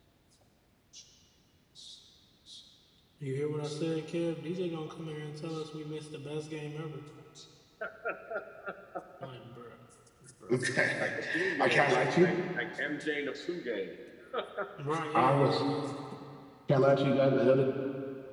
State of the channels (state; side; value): identical; both; correlation 1.00